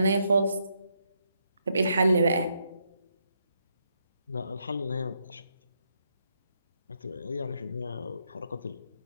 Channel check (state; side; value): inverted; both; correlation -0.78